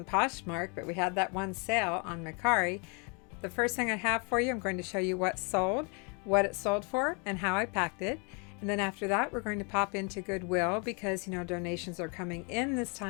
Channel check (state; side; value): quieter; right; 34.3 dB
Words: Poshmark, but we had that one sale on Macari. The first thing I have for you, I'm going to show you what sold, what it sold for, and how I packed it. And then after that, we're going to pop into Goodwill because, donations are coming in this